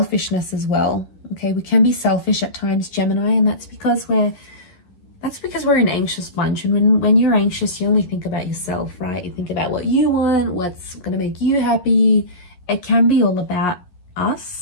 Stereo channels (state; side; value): late; right; 11 ms